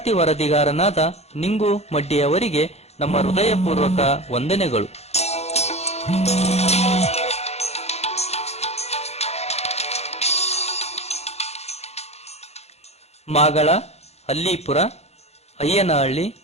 ವರದಿಗಾರನಾದ ನಿಂಗು ಮಡ್ಡಿಯವರಿಗೆ ನಮ್ಮ ಹೃದಯಪೂರ್ವಕ ವಂದನೆಗಳು. ಮಾಗಳ, ಅಲ್ಲಿಪುರ, ಅಯ್ಯನಹಳ್ಳಿ,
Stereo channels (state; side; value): late; right; 0.31 ms